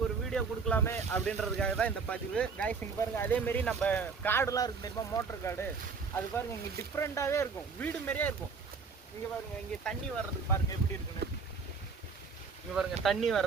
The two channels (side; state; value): left; quieter; 5.1 dB